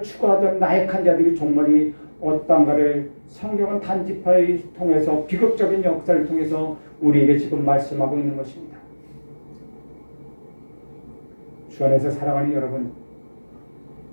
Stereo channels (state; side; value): inverted; both; correlation -1.00